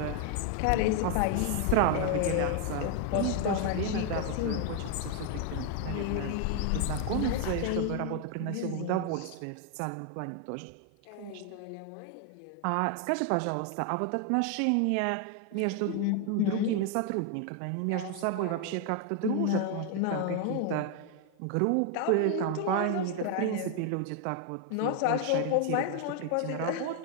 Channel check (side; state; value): both; different; correlation 0.01